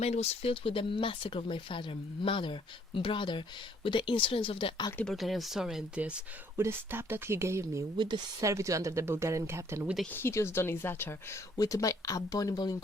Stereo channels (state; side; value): normal; both; correlation 0.64